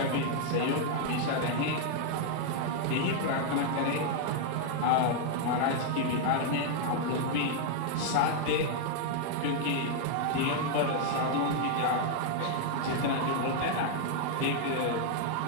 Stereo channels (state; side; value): different; both; correlation 0.00